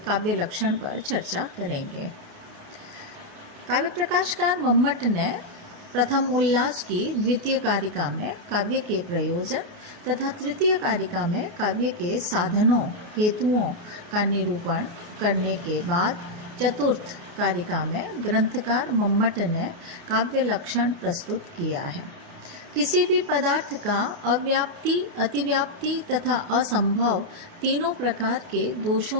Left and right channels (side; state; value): left; late; 29 ms